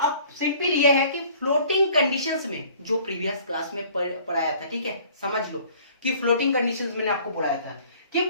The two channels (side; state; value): both; inverted; correlation -0.53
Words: सिंपल ये है कि फ्लोटिंग कंडीशंस में, जो प्रीवियस क्लास में पढ़ाया था, ठीक है, समझ लो कि फ्लोटिंग कंडीशंस मैंने आपको पढ़ाया था कि